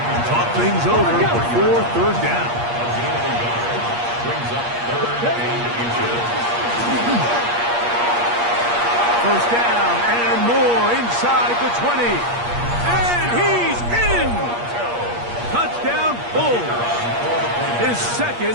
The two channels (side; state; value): left; late; 8.5 ms